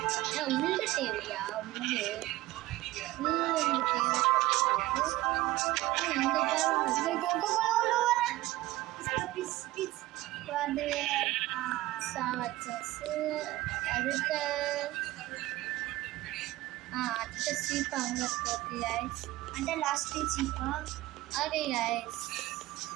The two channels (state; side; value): quieter; left; 17.7 dB